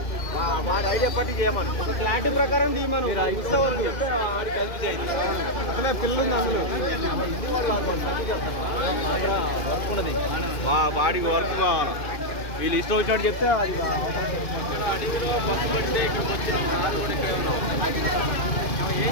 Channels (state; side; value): late; right; 2.5 ms